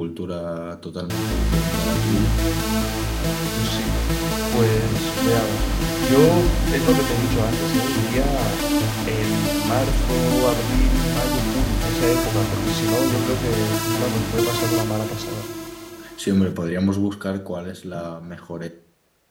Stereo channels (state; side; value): identical; both; correlation 1.00